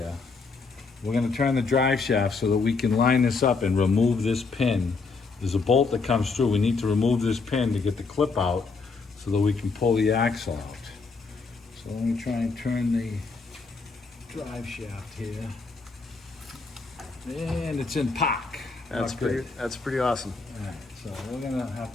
We're going to turn the drive shaft so that we can line this up and remove this pin. There's a bolt that comes through. We need to remove this pin to get the clip out so that we can pull the axle out. So let me try and turn the drive shaft here. And it's in park. That's pretty awesome. All right, so we're gonna have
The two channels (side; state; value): right; quieter; 4.3 dB